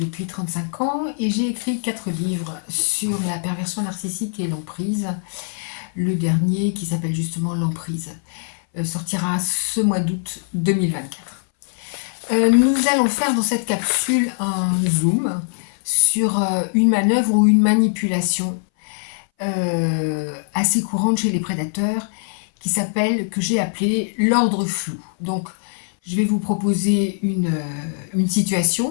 35 ans et j'ai écrit 4 livres sur la perversion narcissique et l'emprise. Le dernier, qui s'appelle justement L'emprise, sortira ce mois d'août 2024. Nous allons faire dans cette capsule un zoom sur une manœuvre ou une manipulation assez courante chez les prédateurs que j'ai appelé l'ordre flou. Donc, je vais vous proposer une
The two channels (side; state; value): right; silent; 60 dB below the other